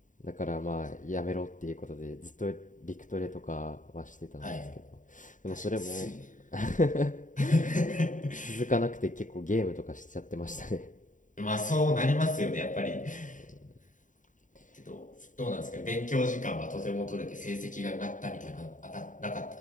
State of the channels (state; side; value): late; right; 0.37 ms